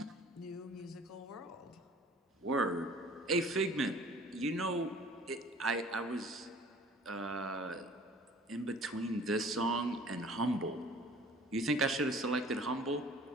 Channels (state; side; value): normal; both; correlation 0.50